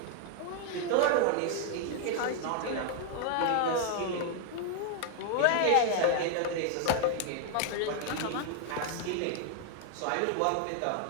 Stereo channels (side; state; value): both; different; correlation 0.00